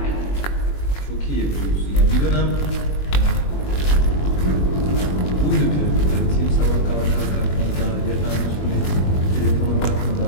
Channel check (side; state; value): right; late; 21 ms